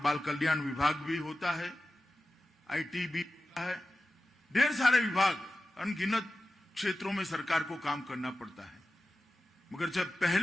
कल्याण विभाग भी होता है, आईटी भी होता है, ढेर सारे विभाग, अनगिनत क्षेत्रों में सरकार को काम करना पड़ता है। मगर जब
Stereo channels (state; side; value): normal; both; correlation 0.94